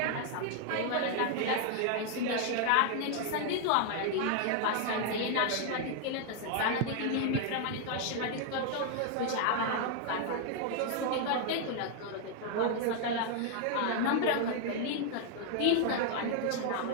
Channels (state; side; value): different; both; correlation 0.00